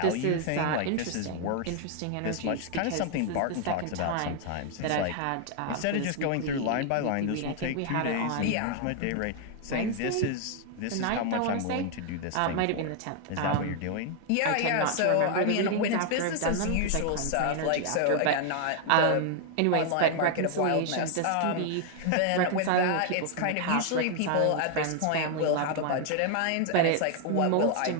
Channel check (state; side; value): different; both; correlation 0.00